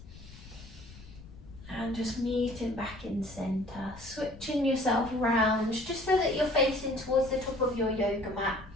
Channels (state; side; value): noise; left; rumble, 18 dB below the sound